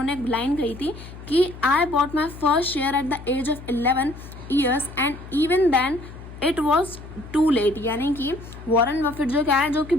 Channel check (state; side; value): noise; left; hum, 15 dB below the sound